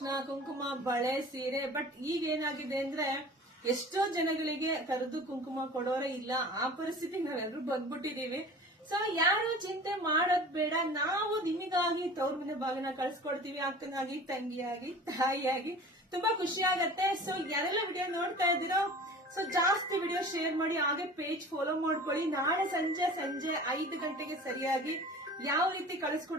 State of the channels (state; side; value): normal; both; correlation 0.41